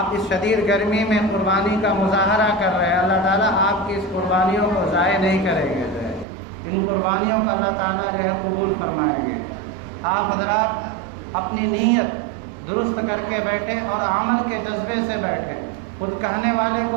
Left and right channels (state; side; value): drops out; left; at 6.2 s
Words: اس شدید گرمی میں قربانی کا مظاہرہ کر رہے ہیں، اللہ تعالیٰ آپ کی اس قربانیوں کو ضائع نہیں کریں گے، جو ہے ان قربانیوں کو اللہ تعالیٰ جو ہے قبول فرمائیں گے۔ آپ حضرات اپنی نیت درست کر کے بیٹھے اور عمل کے جذبے سے بیٹھے۔ خود کہنے والے کو